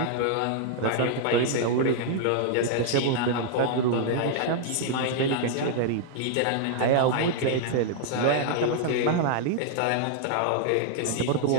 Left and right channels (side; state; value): both; different; correlation -0.01